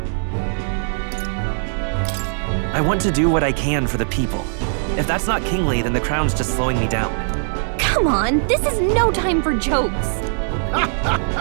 I want to do what I can for the people. If that's not kingly, then the crown's just slowing me down. Come on, this is no time for jokes.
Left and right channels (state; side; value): silent; left; 56 dB below the other